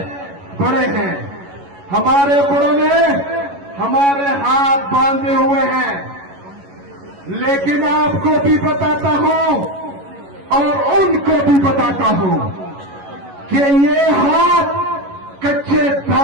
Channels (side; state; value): left; late; 11 ms